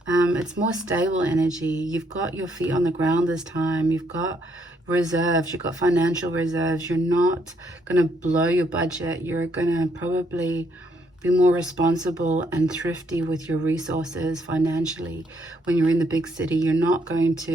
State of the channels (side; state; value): both; normal; correlation 0.71